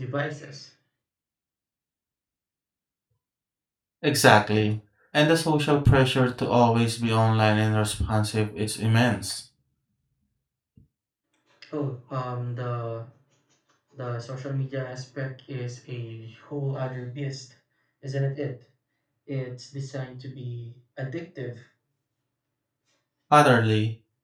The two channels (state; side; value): identical; both; correlation 1.00